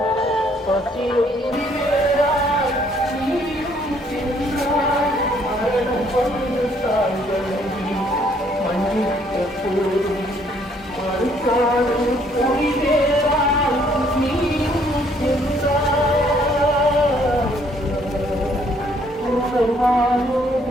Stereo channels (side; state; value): both; normal; correlation 0.65